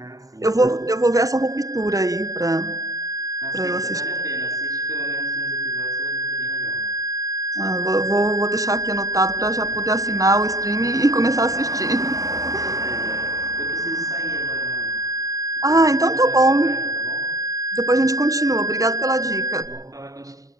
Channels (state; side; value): late; left; 0.16 ms